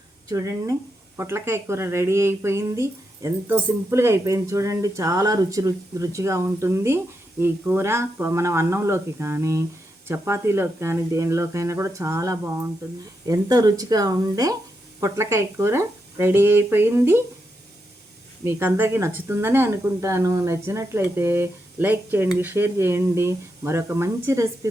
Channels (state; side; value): normal; both; correlation 0.84